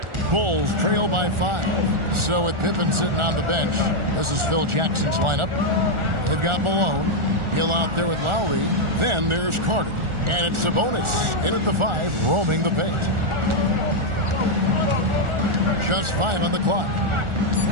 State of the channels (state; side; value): late; left; 1.4 ms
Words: Bulls trail by 5. So with Pippen sitting on the bench, this is Phil Jackson's lineup. They've got Malone. Hill out there with Lowry. Then there's Carter. And it's Sabonis in at the 5, roaming the paint. Just 5 on the clock.